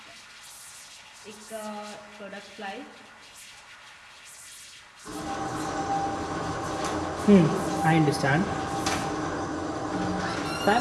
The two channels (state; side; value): identical; both; correlation 1.00